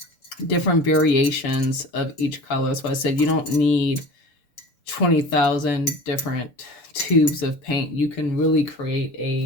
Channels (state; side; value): late; right; 6.8 ms